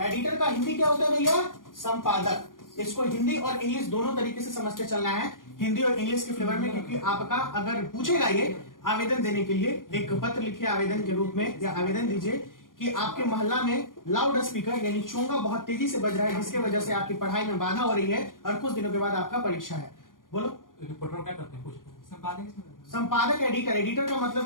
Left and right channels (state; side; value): late; right; 0.90 ms